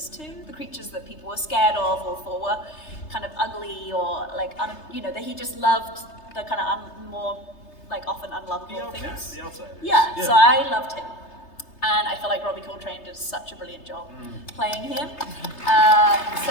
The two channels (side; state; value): right; late; 3.3 ms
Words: too, the creatures that people were scared of or thought were kind of ugly or like, you know, that he just loved the kind of more like often unlovable things. The outsider. Yeah, so I loved him. And I feel like Robbie Coltrane did such a brilliant job playing him.